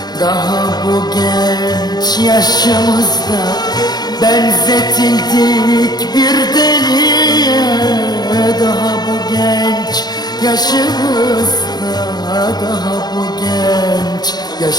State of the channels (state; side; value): late; right; 0.20 ms